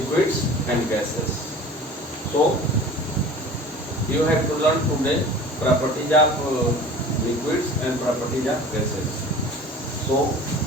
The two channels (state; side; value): normal; both; correlation 0.42